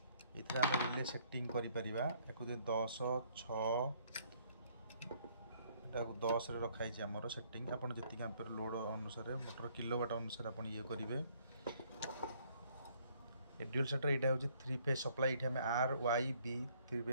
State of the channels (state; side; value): inverted; both; correlation -0.64